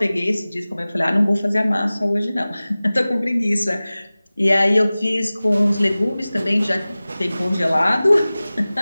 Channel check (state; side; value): inverted; both; correlation -0.98